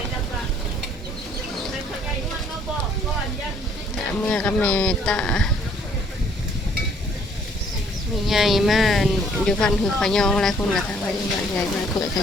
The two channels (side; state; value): both; normal; correlation 0.62